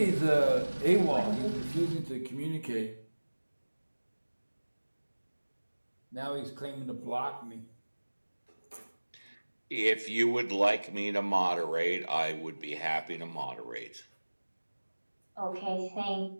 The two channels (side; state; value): both; inverted; correlation -1.00